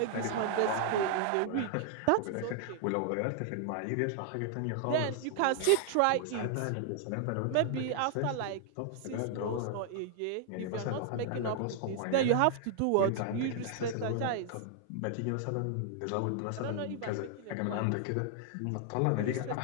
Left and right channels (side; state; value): both; different; correlation 0.00